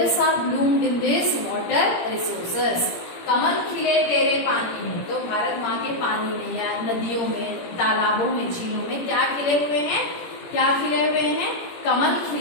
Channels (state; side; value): late; right; 17 ms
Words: are bloomed in this water resources. कमल खिले तेरे पानी में, तो भारत माँ के पानी में या नदियों में, तालाबों में, झीलों में क्या खिले हुए हैं? क्या खिले हुए हैं? कमल